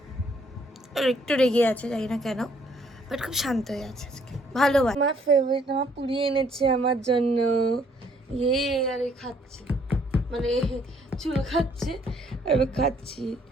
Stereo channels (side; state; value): both; normal; correlation 0.65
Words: একটু রেগে আছে জানি না কেন, বাট খুব শান্ত হয়ে আছে আজকে, ভালো। আমার ফেভারিট আমার পুরি এনেছে আমার জন্য, ইয়ে আর খাচ্ছে, মানে চুল খাচ্ছে আর আমি খাচ্ছি।